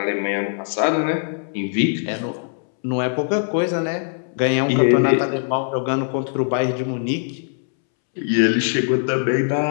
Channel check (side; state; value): right; silent; 65 dB below the other